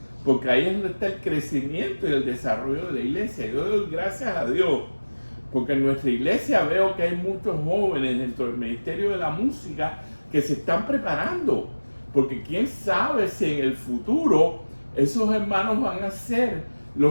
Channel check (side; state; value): both; inverted; correlation -1.00